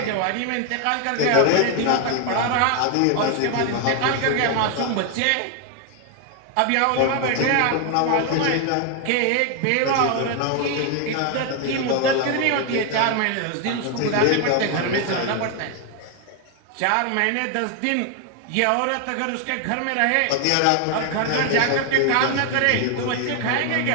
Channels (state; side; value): different; both; correlation 0.01